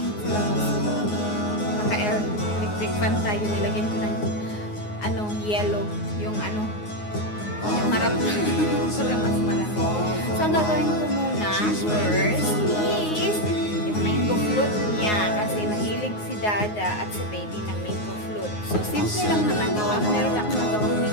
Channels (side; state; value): right; late; 9.5 ms